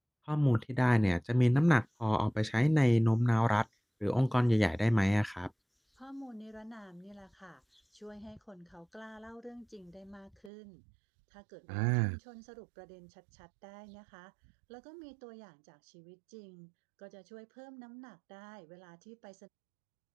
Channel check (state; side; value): drops out; left; at 10.5 s